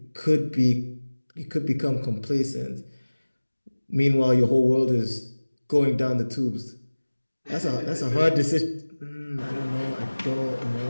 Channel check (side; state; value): both; inverted; correlation -1.00